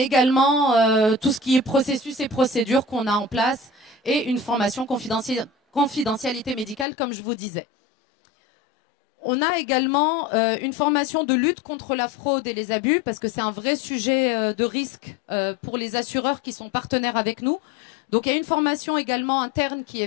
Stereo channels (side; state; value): right; drops out; at 6.9 s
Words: également tout ce qui est processus et procédures qu'on a en place et une formation confidentialité médicale, comme je vous disais. On a également une formation de lutte contre la fraude et les abus, parce que c'est un vrai sujet de risque pour les assureurs qui sont partenaires avec nous. Donc il y a une formation également interne qui